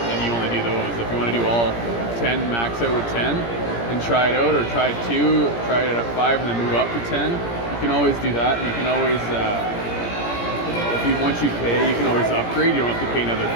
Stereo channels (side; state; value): right; late; 17 ms